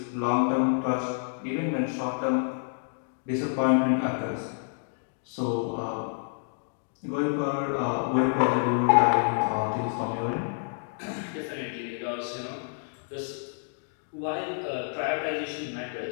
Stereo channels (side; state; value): right; silent; digital silence